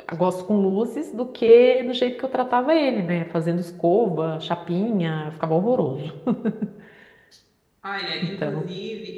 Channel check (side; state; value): both; identical; correlation 1.00